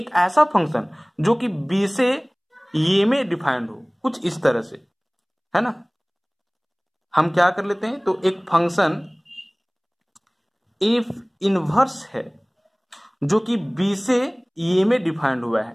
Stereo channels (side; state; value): both; identical; correlation 1.00